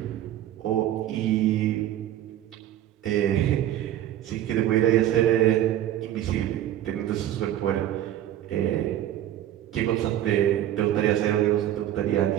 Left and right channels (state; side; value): quieter; left; 12.3 dB